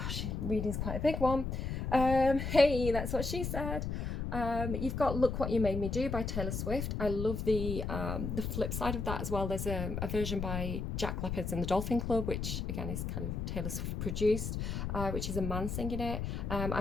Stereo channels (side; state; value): left; noise; rumble, 3 dB below the sound